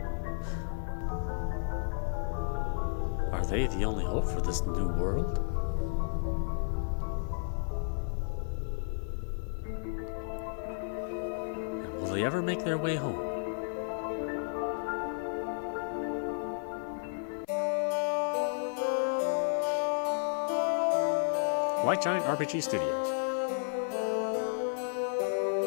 Are they the only hope for this new world? And will they ever make their way home? White Giant RPG Studios.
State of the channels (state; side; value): silent; right; 56 dB below the other